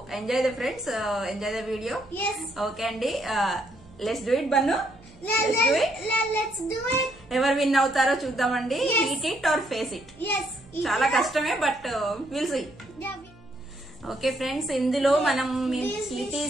enjoy the friends, enjoy the video. Okay అండి, let's do it Bannu. Let's do it. ఎవరు విన్ అవుతారో చూద్దామండి. Eat it or face it. చాలా కష్టమే, but will see. Okay friends, ఇందులో మనం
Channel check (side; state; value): right; noise; hum, 26 dB below the sound